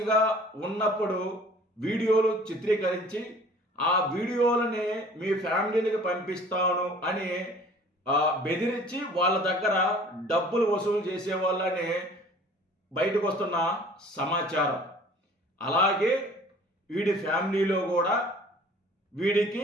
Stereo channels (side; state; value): both; normal; correlation 0.50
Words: ఉన్నప్పుడు వీడియోలు చిత్రీకరించి ఆ వీడియోలని మీ ఫ్యామిలీలకు పంపిస్తాను అని బెదిరించి వాళ్ళ దగ్గర డబ్బులు వసూలు చేసే వాళ్ళని బయటకు వస్తున్న సమాచారం. అలాగే వీడి ఫ్యామిలీలో కూడా వీడికి